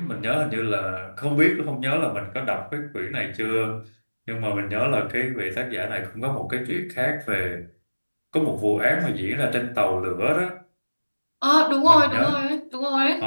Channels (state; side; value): inverted; both; correlation -1.00